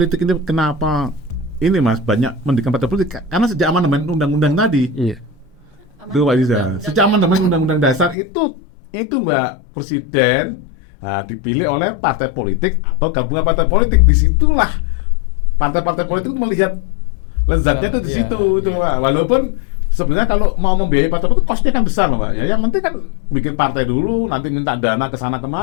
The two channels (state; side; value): drops out; right; at 8.2 s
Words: ini kenapa ini Mas banyak mendirikan partai politik, karena sejak amandemen undang-undang tadi. Iya. Itu Pak Iza. Sejak amandemen undang-undang dasar itu Mbak Presiden dipilih oleh partai politik atau gabungan partai politik. Disitulah partai-partai politik melihat lezatnya itu di situ itu Pak. Walaupun sebenarnya kalau mau membiayai partai politik kosnya kan besar loh Pak. Ya yang penting kan bikin partai dulu, nanti minta dana ke sana